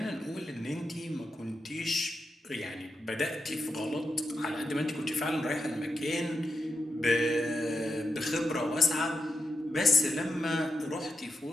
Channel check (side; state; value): both; normal; correlation 0.87